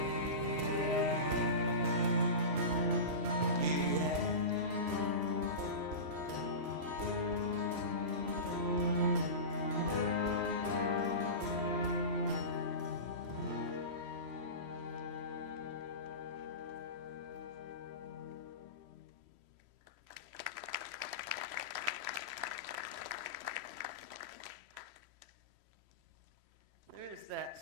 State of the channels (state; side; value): late; left; 3.1 ms